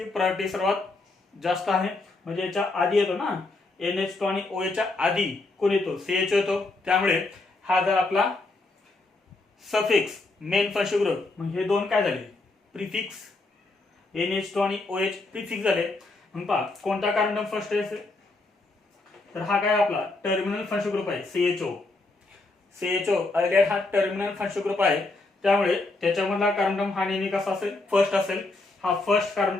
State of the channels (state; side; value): quieter; right; 3.2 dB